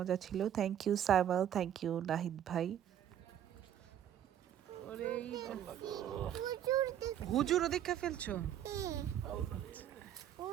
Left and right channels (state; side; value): quieter; left; 10.4 dB